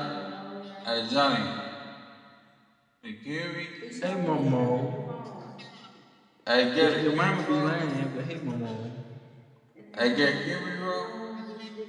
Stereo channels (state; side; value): identical; both; correlation 1.00